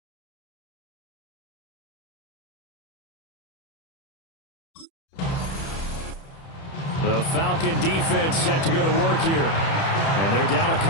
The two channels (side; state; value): right; late; 30 ms